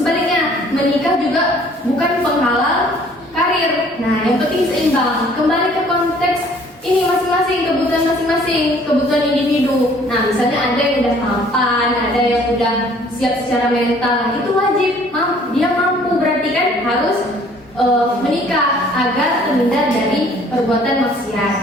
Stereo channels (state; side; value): normal; both; correlation 0.56